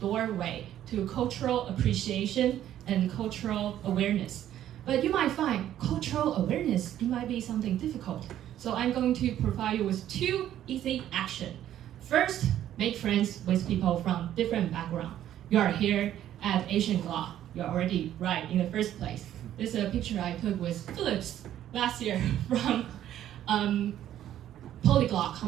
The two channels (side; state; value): left; quieter; 11.7 dB